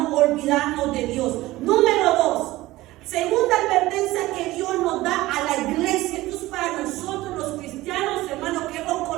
olvidarnos de Dios. Número 2, segunda advertencia que Dios nos da a la iglesia. Esto es para nosotros los cristianos, hermanos, que hemos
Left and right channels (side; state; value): left; quieter; 17.8 dB